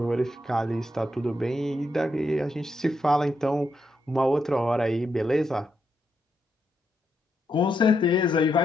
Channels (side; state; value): both; normal; correlation 0.81